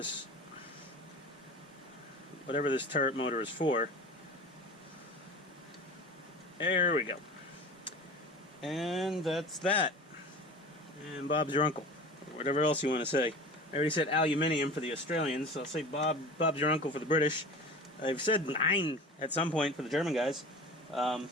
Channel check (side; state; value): both; normal; correlation 0.36